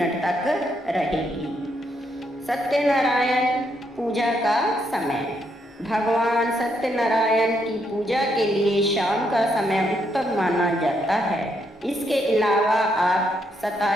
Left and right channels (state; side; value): normal; both; correlation 0.76